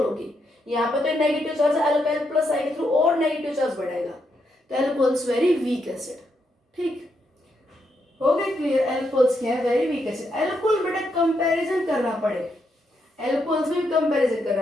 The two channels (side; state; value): both; normal; correlation 0.80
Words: होगी. यहाँ पे तो नेगेटिव चार्ज अल्काइल प्लस आई के थ्रू और नेगेटिव चार्ज बढ़ाएगा. तो एल्कोहल्स वेरी वीक एसिड. ठीक हो गए क्लियर? एल्कोहल्स क्या है? Very weak acid. एल्कोहल बेटा कंपैरिजन करना पड़े, एल्कोहल्स में भी कंपैरिजन करना